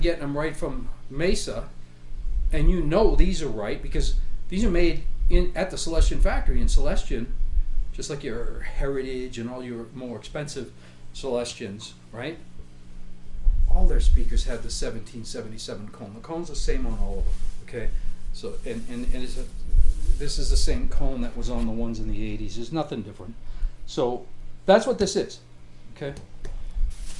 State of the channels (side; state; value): both; identical; correlation 1.00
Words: them right from Mesa. And you know these are right because these are made at the Celestion factory in Celestion, just like your Heritage and all your more expensive Celestions, right? All their speakers have the 1777 cone. The cone's the same on all of them, okay? So, and this is the same cone that was on the ones in the 80s. There's nothing different. So that's what this is, okay?